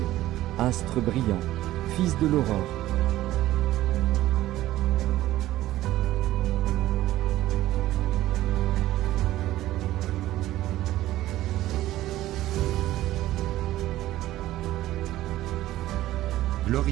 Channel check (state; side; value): quieter; left; 15.1 dB